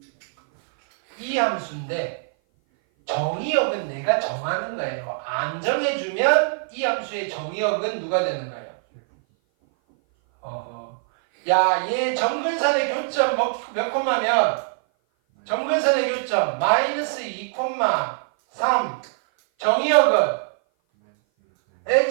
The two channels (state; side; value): silent; left; 57 dB below the other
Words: 이 함수인데 정의역은 내가 정하는 거예요. 안 정해주면 이 함수의 정의역은 누가 되는 거예요? 야, 얘 정근선의 교점 몇 콤마면? 정근선의 교점 마이너스 2,3. 정의역은